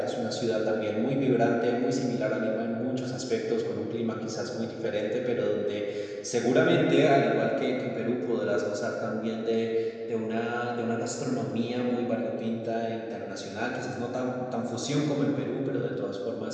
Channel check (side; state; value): both; identical; correlation 1.00